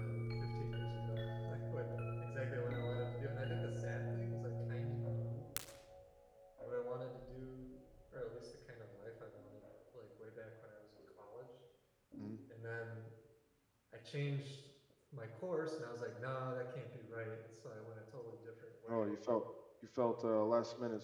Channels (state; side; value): identical; both; correlation 1.00